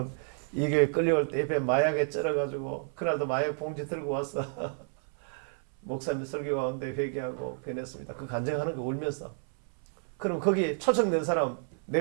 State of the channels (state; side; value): silent; left; 57 dB below the other